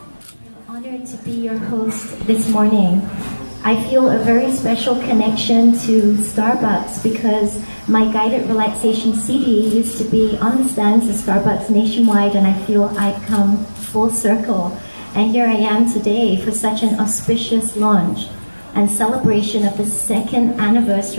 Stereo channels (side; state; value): both; inverted; correlation -1.00